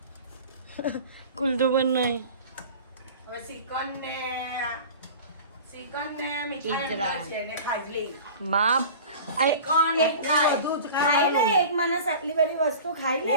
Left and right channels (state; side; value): inverted; both; correlation -0.38